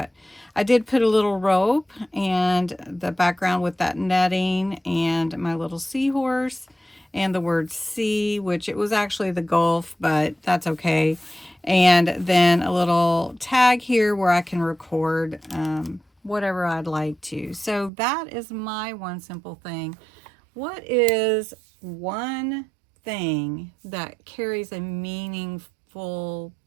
I did put a little rope and the background with that netting and my little seahorse and the word sea, which it was actually the Gulf, but that's okay. And then a little tag here where I can record whatever I'd like to. So that is my one simple thing. What is one thing that carries a meaningful,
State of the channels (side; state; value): left; drops out; at 17.9 s